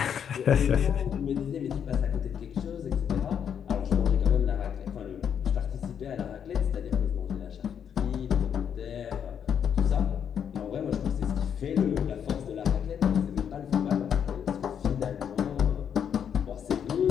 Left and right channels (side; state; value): right; quieter; 8.2 dB